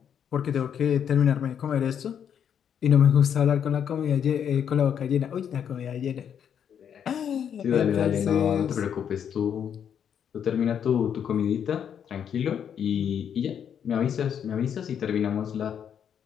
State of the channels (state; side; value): quieter; right; 8.4 dB